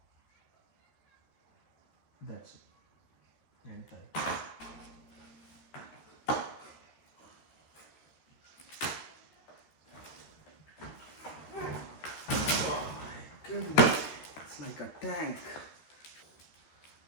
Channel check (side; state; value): right; late; 13 ms